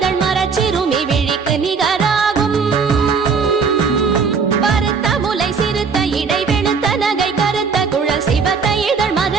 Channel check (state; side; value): quieter; left; 5.4 dB